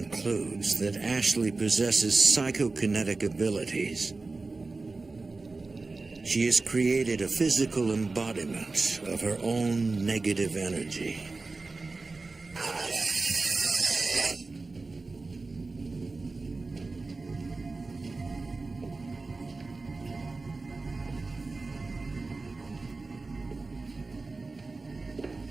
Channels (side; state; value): left; quieter; 3.7 dB